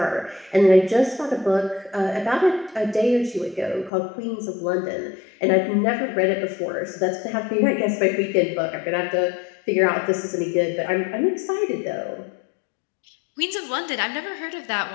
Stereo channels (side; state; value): right; drops out; at 3.9 s